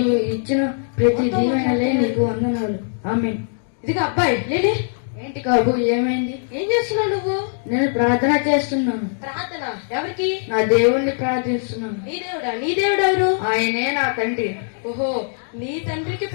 ఇచ్చిన ప్రతి దీవెనలే నీకు వందనాలు. ఆమేన్. ఇదిగో అబ్బాయి లేలే. ఏంటి కాబు, ఏమైంది? ఏం చేస్తున్నావు నువ్వు? నేను ప్రార్థన చేస్తున్నాను. ప్రార్థన ఎవరికి? నా దేవుణ్ణి ప్రార్థిస్తున్నాను. నీ దేవుడా? నీ దేవుడు ఎవరు? ఆయనే నా తండ్రి. ఓహో, నీ తండ్రికి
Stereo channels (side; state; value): right; silent; digital silence